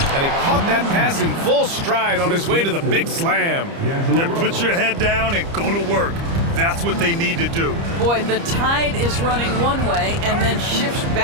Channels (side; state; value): left; late; 30 ms